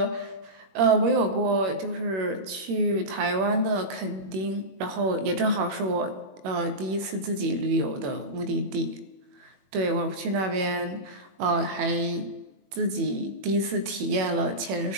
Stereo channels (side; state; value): left; late; 21 ms